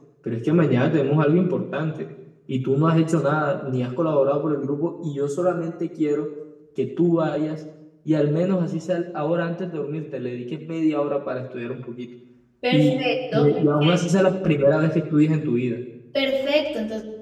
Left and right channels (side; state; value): both; identical; correlation 1.00